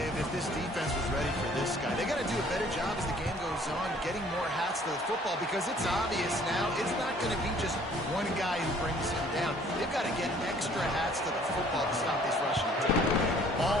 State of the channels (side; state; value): both; normal; correlation 0.57